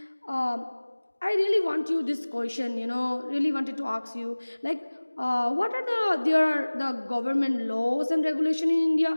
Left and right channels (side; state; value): both; inverted; correlation -1.00